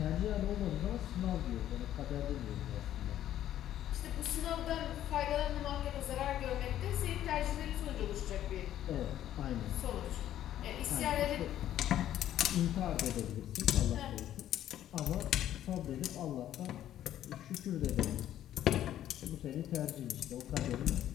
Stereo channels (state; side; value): quieter; right; 11.9 dB